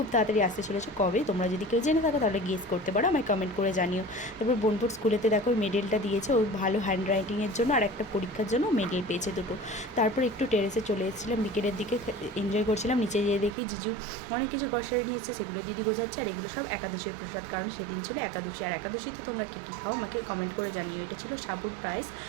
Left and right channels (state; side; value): drops out; left; at 13.6 s